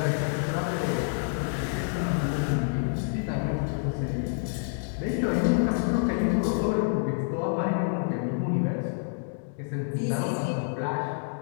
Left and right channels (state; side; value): silent; right; digital silence